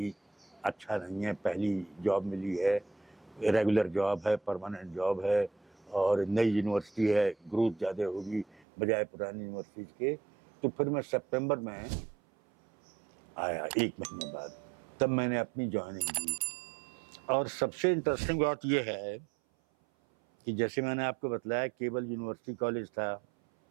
अच्छा नहीं है, पहली जॉब मिली है, रेगुलर जॉब है, परमानेंट जॉब है और नई यूनिवर्सिटी है, ग्रोथ ज़्यादा होगी बजाय पुरानी यूनिवर्सिटी के। तो फिर मैं सितंबर में आया 1 महीने बाद, तब मैंने अपनी ज्वाइनिंग दी। और सबसे इंटरेस्टिंग बात यह है कि जैसे मैंने आपको बताया केवल यूनिवर्सिटी कॉलेज था,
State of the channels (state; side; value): drops out; left; at 8.6 s